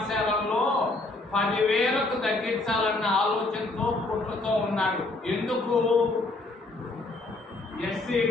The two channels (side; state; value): right; quieter; 3.0 dB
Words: 10,000కు తగ్గించాలన్న ఆలోచనతో కుట్రతో ఉన్నాడు. ఎందుకు?